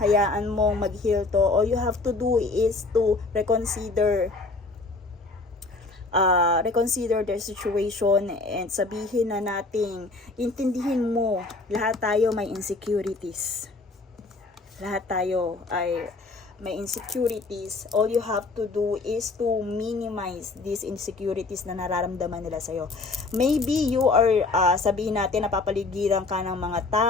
Hayaan mong mag-heal to. All you have to do is to reconsider their situation and sabihin na nating intindihin mo, lahat tayo may insecurities. Lahat tayo ay may insecurities. All you have to do is to minimize these insecurities na nararamdaman nila sa'yo. Maybe you are, sabihin natin, napapaligiran ka ng mga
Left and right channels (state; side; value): quieter; right; 3.5 dB